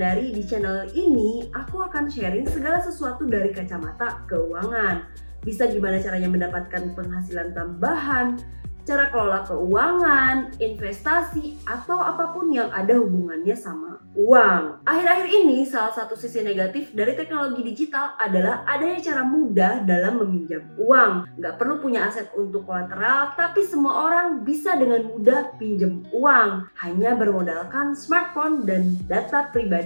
Di channel ini aku akan sharing segala sesuatu dari kacamata keuangan. Bisa gimana caranya mendapatkan penghasilan tambahan, cara kelola keuangan, investasi, atau apapun yang ada hubungannya sama uang. Akhir-akhir ini salah satu sisi negatif dari teknologi digital adalah adanya cara mudah dalam meminjam uang. Nggak perlu punya aset untuk kolateral, tapi semua orang bisa dengan mudah pinjam uang. Hanya bermodalkan smartphone dan data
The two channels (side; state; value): both; inverted; correlation -1.00